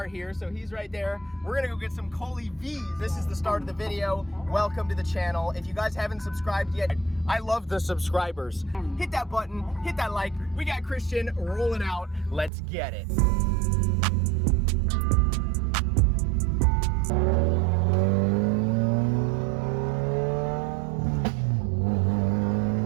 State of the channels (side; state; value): left; drops out; at 12.5 s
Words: here, so he's right there. We're gonna go get some Coley V's. This is the start of the video. Welcome to the channel. If you guys haven't subscribed yet, I love the subscribers. Hit that button, hit that like. We got Christian rolling out. Let's get it.